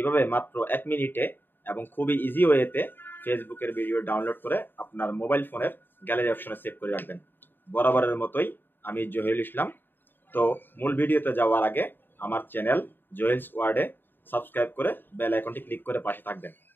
মাত্র 1 মিনিটে এবং খুবই ইজি ওয়েতে ফেসবুকের ভিডিও ডাউনলোড করে আপনার মোবাইল ফোনের গ্যালারি অপশনে সেভ করে রাখবেন। বরাবরের মতোই আমি জহিরুল ইসলাম। তো মূল ভিডিওতে যাওয়ার আগে আমার চ্যানেল জহিলস ওয়ার্ল্ডে সাবস্ক্রাইব করে বেল আইকনটি ক্লিক করে পাশে থাকবেন।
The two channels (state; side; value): late; right; 0.095 ms